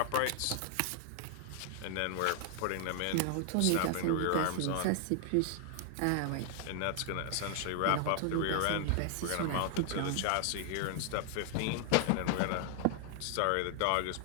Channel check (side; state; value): both; different; correlation 0.00